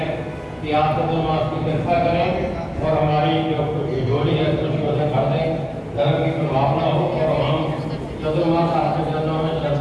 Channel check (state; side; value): identical; both; correlation 1.00